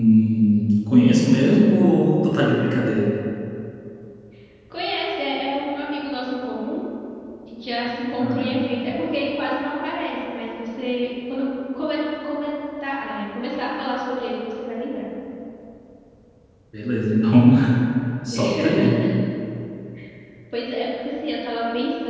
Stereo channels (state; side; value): identical; both; correlation 1.00